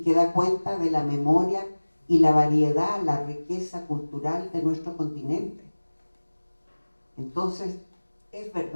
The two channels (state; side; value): inverted; both; correlation -1.00